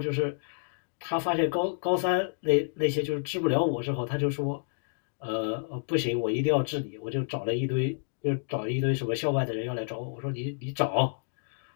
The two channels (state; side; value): silent; right; digital silence